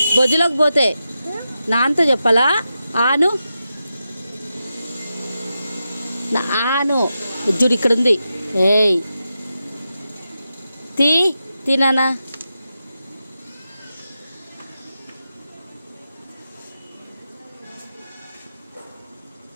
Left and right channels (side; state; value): both; inverted; correlation -0.89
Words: బొజ్జులోకి పోతే. నాన్నతో చెప్పాలా? ఆను ఆను చూడు ఇక్కడ ఉంది. ఏయ్ తినానా?